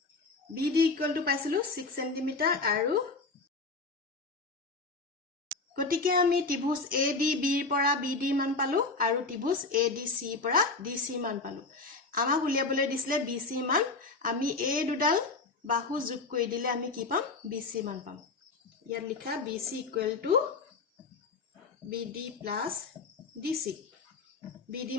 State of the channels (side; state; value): right; quieter; 3.8 dB